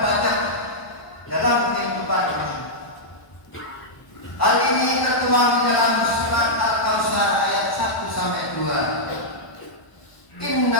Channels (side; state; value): right; late; 1.0 ms